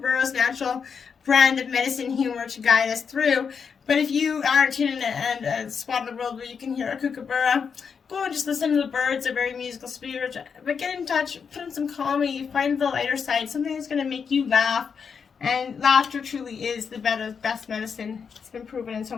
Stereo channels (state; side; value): quieter; right; 6.2 dB